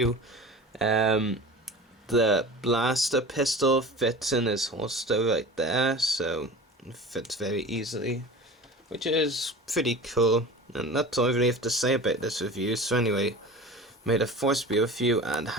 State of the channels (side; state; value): both; normal; correlation 0.36